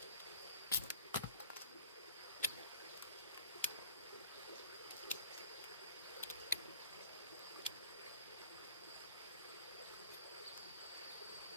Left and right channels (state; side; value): inverted; both; correlation -0.48